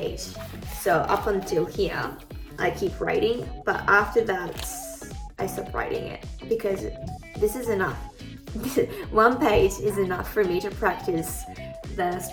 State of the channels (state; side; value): identical; both; correlation 1.00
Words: so up until here, I keep writing, but after that, I stop writing it because this is enough. 1 page is enough for me to practice the